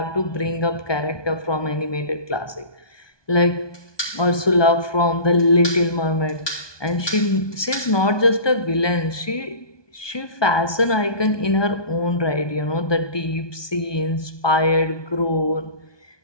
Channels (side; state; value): right; late; 1.2 ms